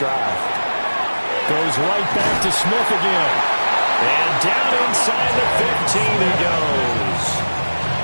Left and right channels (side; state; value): both; inverted; correlation -1.00